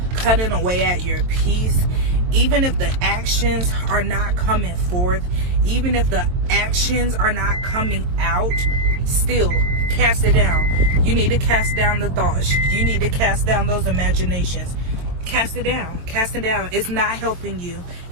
cutting away at your peace. Even if the actions are not coming forth, even if the actions are not coming out, still cast it down. You need to cast down the thoughts. You need to cast down those imaginations. Cast it down. Cast it down. It's not helping you.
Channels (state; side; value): late; left; 23 ms